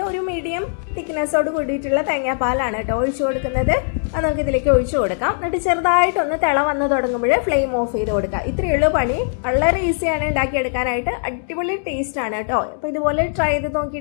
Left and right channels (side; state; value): right; silent; digital silence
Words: ഒരു മീഡിയം തിക്നെസ്സോട് കൂടിയിട്ടുള്ള തേങ്ങാപ്പാലാണ് കേട്ടോ ഒഴിച്ചു കൊടുക്കുന്നത്. അത് നമുക്ക് ഇതിലേക്ക് ഒഴിച്ചു കൊടുക്കാം. എന്നിട്ട് ചെറുതായിട്ടൊന്ന് തിള വന്ന് തുടങ്ങുമ്പോൾ ഫ്ലെയിം ഓഫ് ചെയ്ത് കൊടുക്കുക. ഇത്രയുള്ള പണി. വളരെ ഈസിയാണ് ഉണ്ടാക്കിയെടുക്കാനായിട്ട്. അടിപൊളി ടേസ്റ്റ് ആണ് കേട്ടോ. അപ്പോൾ ഇതുപോലെ ട്രൈ ചെയ്ത്